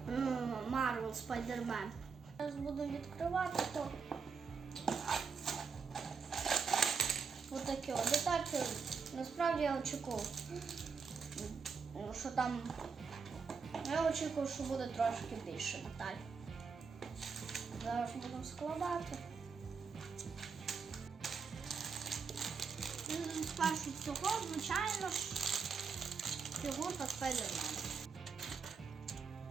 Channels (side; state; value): left; quieter; 5.5 dB